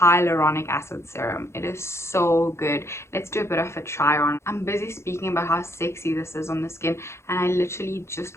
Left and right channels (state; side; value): late; right; 0.13 ms